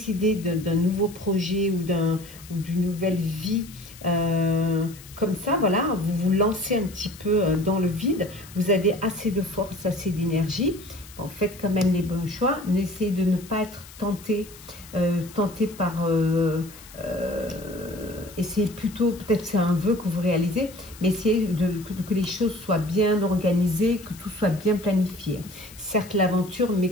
d'un nouveau projet ou d'une nouvelle vie comme ça, voilà, vous vous lancez un petit peu dans le vide, vous avez assez de force, assez d'énergie, bon, faites quand même les bons choix, n'essayez de ne pas être tenté par... essayez plutôt, peut-être c'est un vœu que vous réalisez, mais essayez que les choses soient bien organisées, que tout soit bien planifié. Certes l'aventure, mais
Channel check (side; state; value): left; noise; hiss, 19 dB below the sound